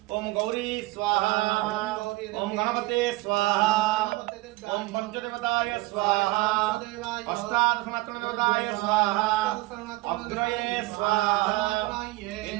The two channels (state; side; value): quieter; left; 20.5 dB